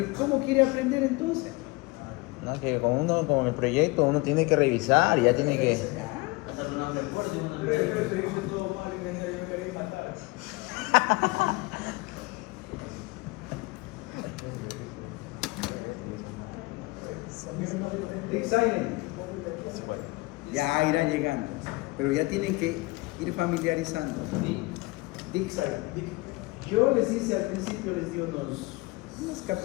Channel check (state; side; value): quieter; right; 23.4 dB